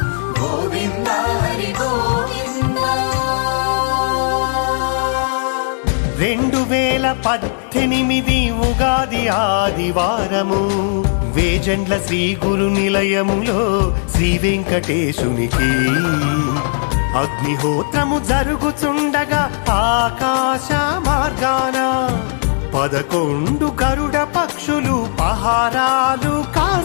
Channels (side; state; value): right; silent; digital silence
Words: గోవింద హరి గోవింద. 2018 ఉగాది ఆదివారము వేజండ్ల శ్రీ గురు నిలయములో శ్రీ వెంకటేశునికి అగ్నిహోత్రము జరుగుచుండగా ఆకాశ మార్గాన 11 గరుడ పక్షులు పహారాలు